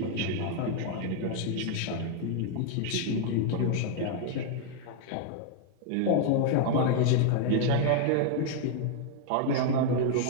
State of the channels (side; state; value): both; different; correlation 0.00